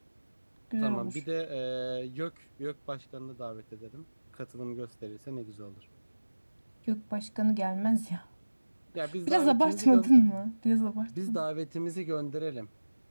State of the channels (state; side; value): inverted; both; correlation -1.00